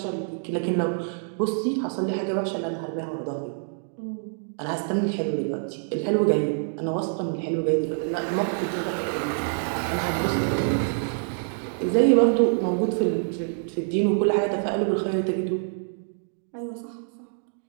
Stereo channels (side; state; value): left; silent; digital silence